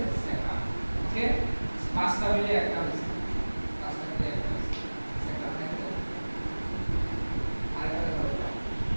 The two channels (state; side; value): inverted; both; correlation -1.00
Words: স্যাকরাম। ওকে 5টা মিলে একটা হয়েছে। 5টা মিলে একটা হয়েছে। স্যাকরাম দেখো। আরেকটা ধরো।